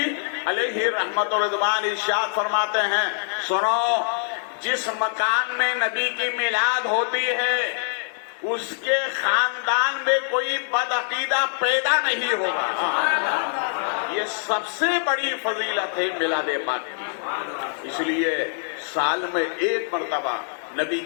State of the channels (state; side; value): silent; right; digital silence